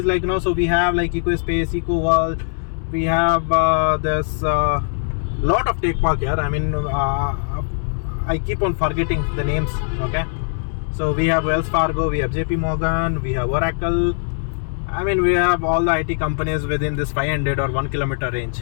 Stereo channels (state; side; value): silent; right; 65 dB below the other